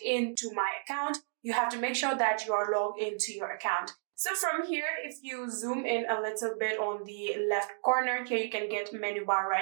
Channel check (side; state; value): left; silent; digital silence